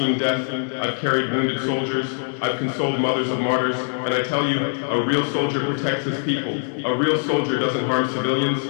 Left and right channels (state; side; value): silent; right; 62 dB below the other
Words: death. I've carried wounded soldiers. I've consoled mothers of martyrs. And I tell you, a real soldier protects his people. A real soldier doesn't harm civilians.